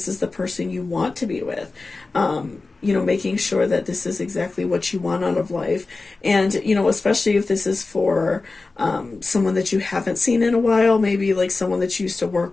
is the person you want to be with, making sure that this is exactly what you want out of life. And, especially if this is for someone that you haven't seen in a while, maybe like someone that you used to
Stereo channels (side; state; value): right; quieter; 3.7 dB